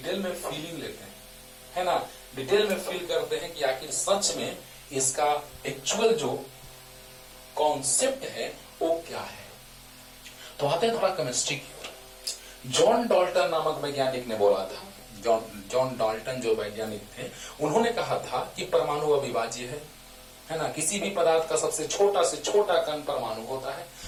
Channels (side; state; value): both; identical; correlation 1.00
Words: में फीलिंग लेते हैं, है ना, डिटेल में फील करते हैं कि आखिर सच में इसका एक्चुअल जो कॉन्सेप्ट है वो क्या है। तो आते हैं थोड़ा केमिस्ट्री की ओर। जॉन डाल्टन नामक वैज्ञानिक ने बोला था, जॉन डाल्टन जो वैज्ञानिक थे, उन्होंने कहा था कि परमाणु अविभाज्य है ना, किसी भी पदार्थ का सबसे छोटा से छोटा कण परमाणु होता है,